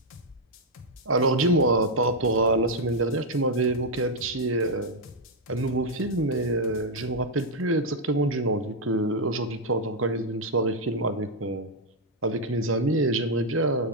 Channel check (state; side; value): normal; both; correlation -0.01